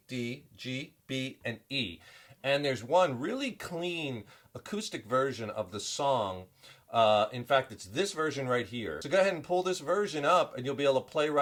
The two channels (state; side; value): identical; both; correlation 1.00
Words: D, G, B, and E. And there's one really clean acoustic version of the song. In fact, it's this version right here. So go ahead and pull this version up and you'll be able to play